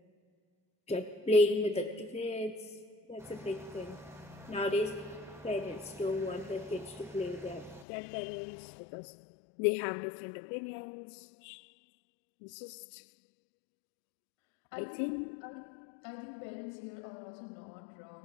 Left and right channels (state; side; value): drops out; right; at 7.9 s